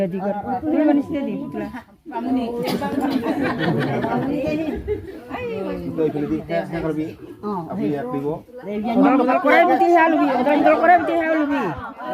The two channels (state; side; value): identical; both; correlation 1.00